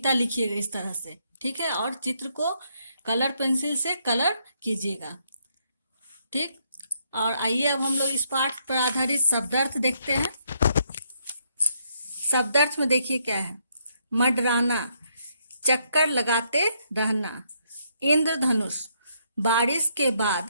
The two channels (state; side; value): inverted; both; correlation -0.74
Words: लिखिएगा इस तरह से, ठीक है। और चित्र को कलर पेंसिल से कलर कीजिएगा, ठीक। और आइए अब हम लोग इस पाठ पर आधारित शब्दार्थ देखते हैं। शब्दार्थ में देखिए क्या है। मंडराना, चक्कर लगाते रहना। इंद्रधनुष, बारिश के बाद